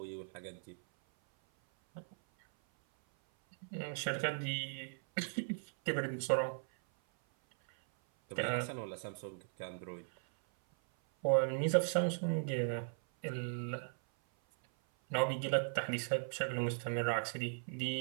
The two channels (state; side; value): silent; left; 53 dB below the other